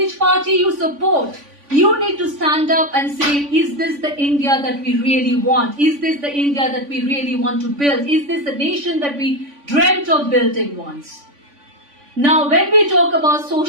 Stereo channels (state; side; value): late; left; 3.5 ms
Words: party you support, you need to stand up and say, is this the India that we really want? Is this the India that we really want to build? Is this the nation that we dreamt of building once? Now, when we talk about